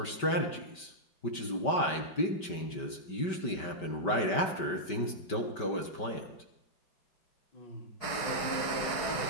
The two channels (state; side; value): late; right; 5.2 ms